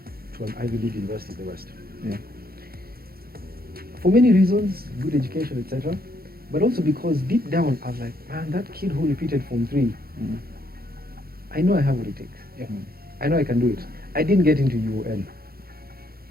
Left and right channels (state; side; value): late; left; 0.44 ms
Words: an Ivy League university in the West. For many reasons, good education, etc. But also because deep down, I was like, man, that kid who repeated Form 3, I know I have what it takes. I know I can do it. I didn't get into UON.